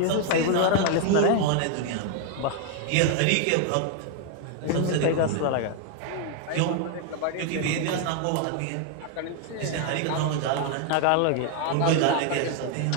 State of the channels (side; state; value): both; different; correlation 0.00